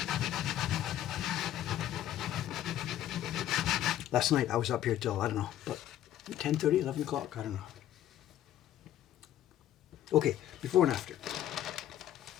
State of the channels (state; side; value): quieter; right; 12.1 dB